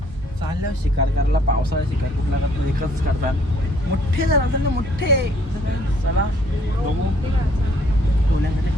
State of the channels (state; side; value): normal; both; correlation 0.63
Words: चालल्यावर शिकार करायला. पावसाळ्यात शिकार कुठला करतात एकच करतात मोठे जण असतात ना मोठे. चला बघू पुण्यामध्ये